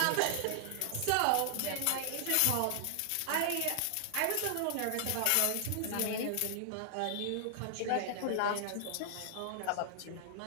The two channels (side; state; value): both; different; correlation 0.00